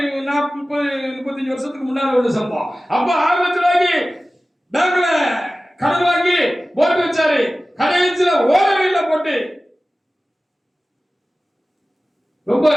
40-35 வருஷத்துக்கு முன்னால உள்ள சம்பவம். அப்ப 6 லட்சம் ரூபாய்க்கு பேங்க்ல கடன் வாங்கி போட்டு வச்சாரு. கடைசியில ஓடவே இல்லை போட்டு. ரொம்ப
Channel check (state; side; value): normal; both; correlation 0.96